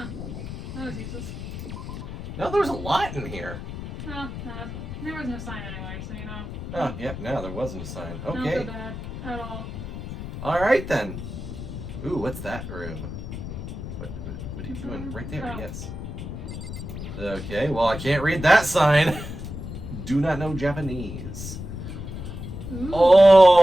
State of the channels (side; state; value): left; noise; rumble, 8 dB below the sound